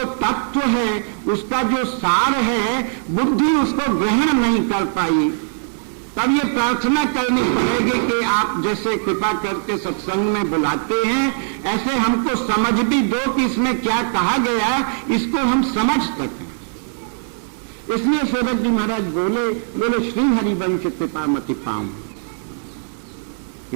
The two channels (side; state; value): left; silent; digital silence